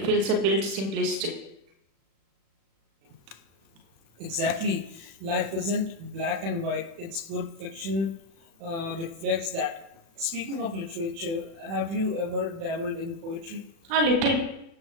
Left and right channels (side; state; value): left; late; 36 ms